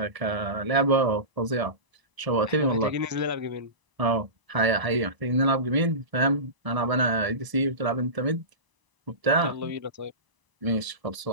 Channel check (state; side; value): late; left; 1.0 ms